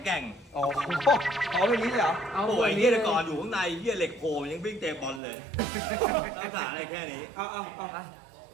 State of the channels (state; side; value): drops out; left; at 5.2 s